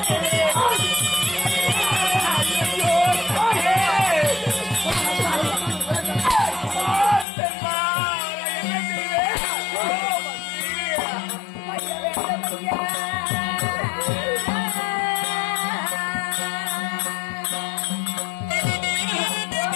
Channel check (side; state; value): right; drops out; at 7.2 s